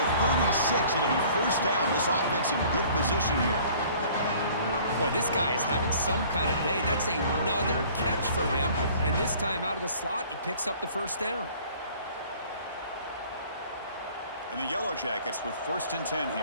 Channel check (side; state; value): both; inverted; correlation -0.52